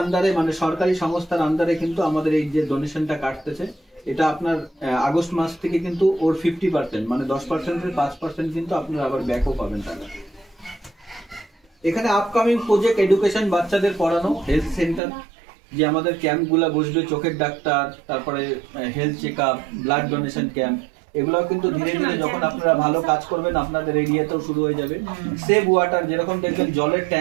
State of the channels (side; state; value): left; drops out; at 15.0 s